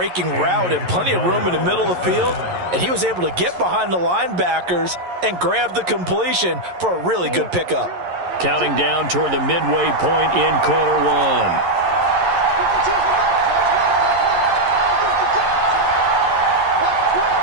route and plenty of room in the middle of the field. And he was able to get behind the linebackers and grab the completion for a really good pickup. Counting down toward the midway point in quarter one.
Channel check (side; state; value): left; late; 11 ms